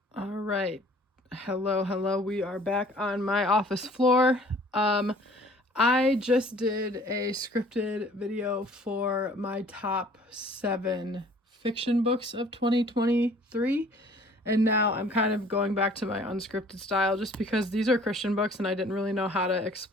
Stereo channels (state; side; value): normal; both; correlation 0.53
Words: All right. Hello. We are back on my office floor. I just did a scripted video for my top 7 fiction books of 2023. And now I'm kind of going back to my unscripted style just because these are Christian books and I didn't really know how to